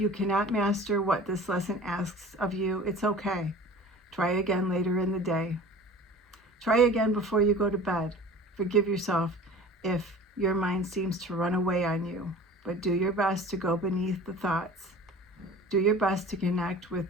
cannot master what this lesson asks of you, it's okay. Try again later in the day. Try again before you go to bed. Forgive yourself if your mind seems to run away on you, but do your best to go beneath the thoughts. Do your best to connect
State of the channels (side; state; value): both; normal; correlation 0.42